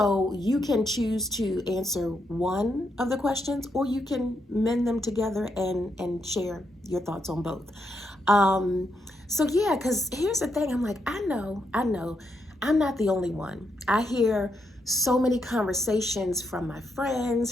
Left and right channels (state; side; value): normal; both; correlation 0.80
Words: you can choose to answer one of the questions, or you can mend them together and share your thoughts on both. So yeah, because here's the thing, I'm like, I know, I'm not the only one. I hear so many conversations from my friends,